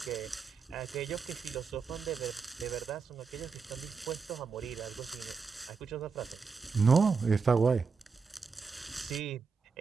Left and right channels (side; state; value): left; quieter; 5.2 dB